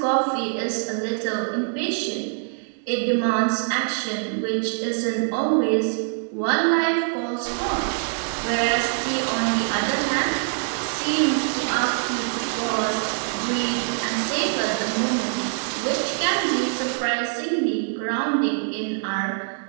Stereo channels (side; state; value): left; silent; 63 dB below the other